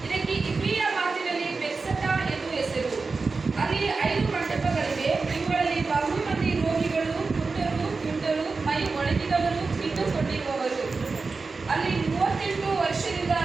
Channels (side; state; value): left; quieter; 4.2 dB